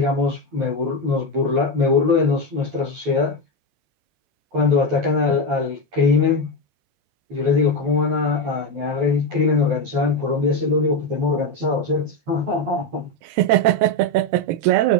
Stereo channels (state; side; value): late; left; 11 ms